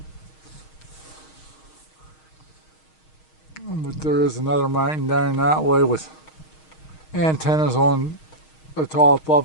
But there is another mountain down that way with antennas on the top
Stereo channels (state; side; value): late; right; 6.4 ms